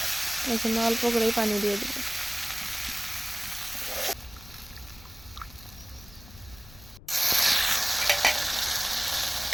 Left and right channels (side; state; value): left; noise; rumble, 20 dB below the sound